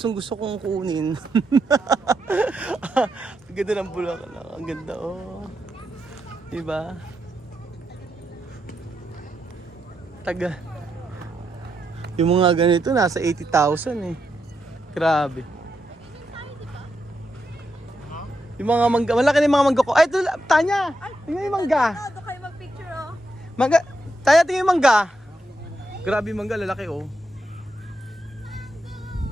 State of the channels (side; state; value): both; normal; correlation 0.83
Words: kong kunin. Ang ganda ng Bulacan. Ang ganda, oh. Diba? Taga. Yung mga ganito, nasa 80,000 eh. Grabe. Yung mga mangga, malaki na yung mga mangga ko. Ay, ito, Tanya! Tingnan yung mangga. Doon kayo mag-picture oh. Mangga, Tanya, tingnan yung mangga. Grabe yung mangga, lalaki oh.